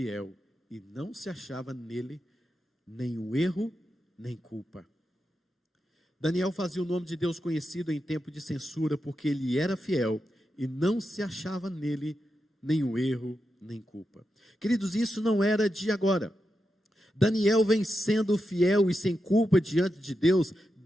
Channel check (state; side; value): normal; both; correlation 0.88